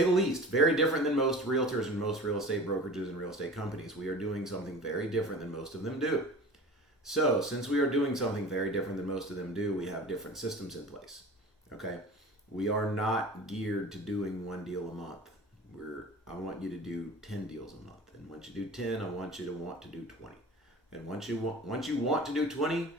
the least, very different than most realtors and most real estate brokerages and real estate companies. We are doing something very different than most of them do. So, since we are doing something very different than most of them do, we have different systems in place. Okay? We are not geared to doing one deal a month. I want you to do 10 deals a month. And once you do 10, I want you to want to do 20. And once you want to do 20,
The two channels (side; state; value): both; normal; correlation 0.38